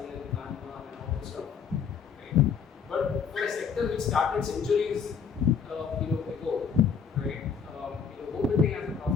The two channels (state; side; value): quieter; right; 6.5 dB